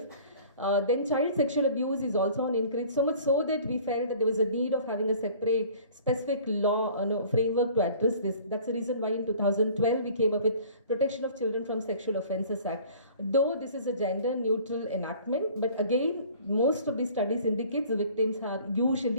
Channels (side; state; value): both; inverted; correlation -0.49